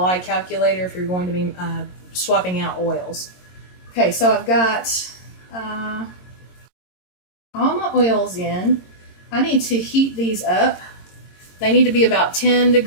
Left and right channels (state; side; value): late; right; 22 ms